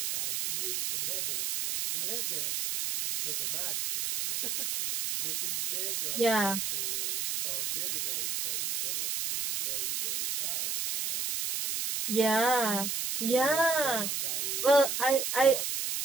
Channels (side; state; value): right; noise; hiss, 1 dB below the sound